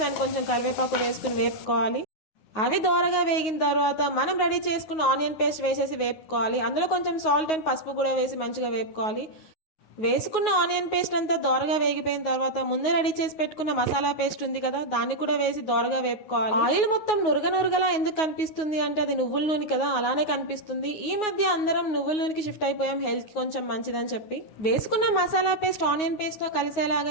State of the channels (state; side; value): late; right; 9.4 ms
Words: అండ్ కొంచెం కరివేపాకు వేసుకుని వేపుకోవాలి. అవి దోరగా వేగిన తర్వాత మనం రెడీ చేసుకున్న ఆనియన్ పేస్ట్ వేసేసి వేపుకోవాలి. అందులో కొంచెం సాల్ట్ అండ్ పసుపు కూడా వేసి మంచిగా వేపుకోవాలి. వేసుకున్న ఆనియన్ పేస్ట్ అంతా దోరగా వేగిపోయిన తర్వాత ముందే రెడీ చేసి పెట్టుకున్న మసాలా పేస్ట్ ఉంది కదా, దాన్ని కూడా వేసి దోరగా వేపుకోవాలి. ఆయిల్ మొత్తం నురగలా ఎందుకు కనిపిస్తుంది అంటే అది నువ్వుల నూనె కదా, అలానే కనిపిస్తుంది. ఈ మధ్య అందరం నువ్వుల నూనెకి షిఫ్ట్ అయిపోయాం, హెల్త్ కి కొంచెం మంచిదని చెప్పి. వేసుకున్న మసాలా పేస్ట్ ఆనియన్ పేస్ట్ తో